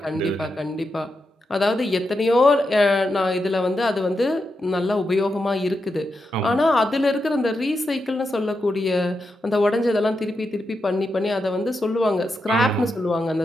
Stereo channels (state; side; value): normal; both; correlation 0.86